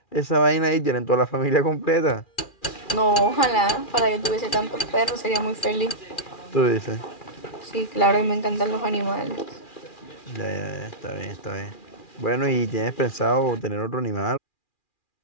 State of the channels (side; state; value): right; late; 2.4 ms